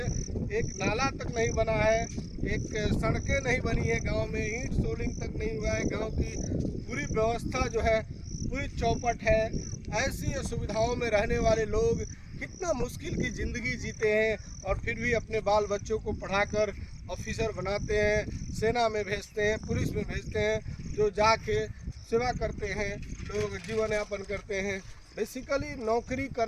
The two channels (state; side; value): identical; both; correlation 1.00